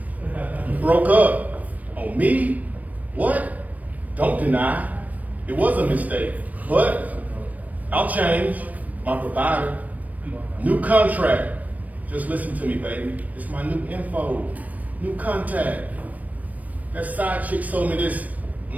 You broke up. On me? What? Don't deny. It was a mistake. But I'll change. My provider. New contract. Just listen to me, baby. It's my new info. New contact. That side chick sold me this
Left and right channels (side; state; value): left; late; 0.074 ms